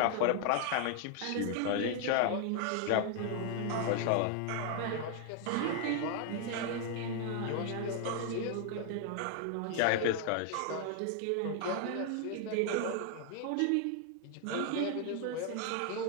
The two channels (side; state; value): both; different; correlation 0.00